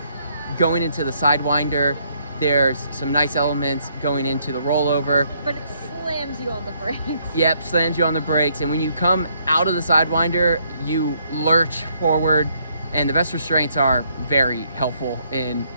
going into the Sidewinder. There's some nice elements going into the rollover. But it slams you on the brakes. Yep, slams you on the brakes, and when you come out of the Sidewinder, you lurch forward, and the best restraints are very helpful in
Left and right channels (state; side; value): inverted; both; correlation -0.70